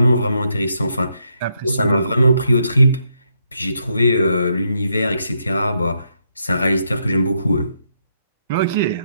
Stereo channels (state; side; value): inverted; both; correlation -0.77